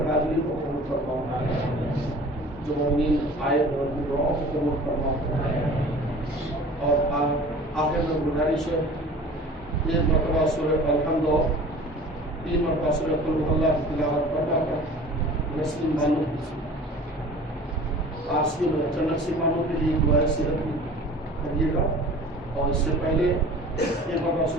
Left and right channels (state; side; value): normal; both; correlation 0.43